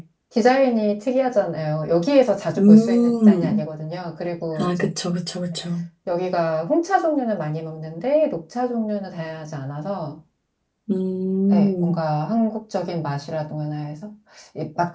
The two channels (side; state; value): both; identical; correlation 1.00